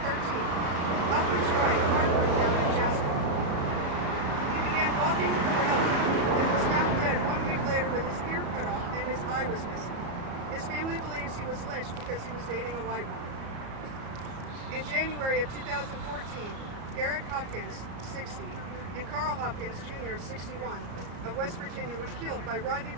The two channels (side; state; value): left; late; 33 ms